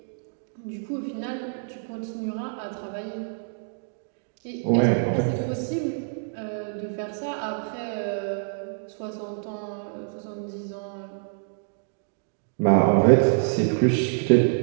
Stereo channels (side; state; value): left; silent; digital silence